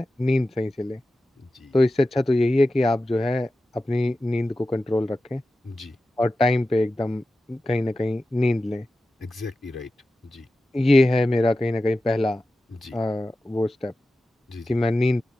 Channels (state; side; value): normal; both; correlation 0.93